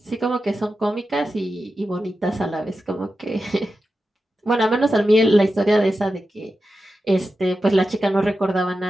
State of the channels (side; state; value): both; normal; correlation 0.91